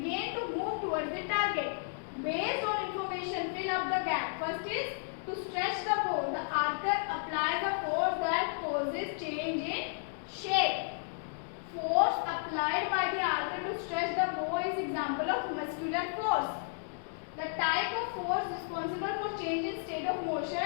to move towards the target. Based on information, fill up the gap. First is to stretch the bow. The archer applies a force that causes change in shape. Force applied by the archer to stretch the bow is example of muscular force. The type of force responsible for change in state of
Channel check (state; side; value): silent; right; digital silence